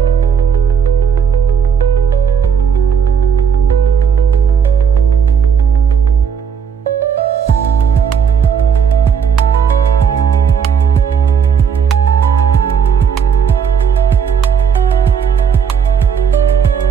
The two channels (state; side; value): quieter; left; 7.0 dB